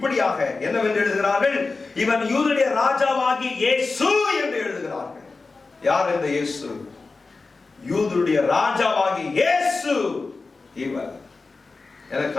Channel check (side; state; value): right; quieter; 3.9 dB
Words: என்னவென்று எழுதுகிறார்கள்? இவன் யூதருடைய ராஜாவாகி இயேசு என்று எழுதுகிறார்கள். யார் இந்த இயேசு? யூதருடைய ராஜாவாகி இயேசு இவர். எனக்கு